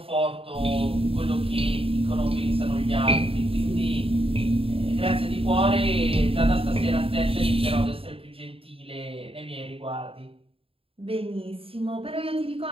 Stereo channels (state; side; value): late; left; 0.27 ms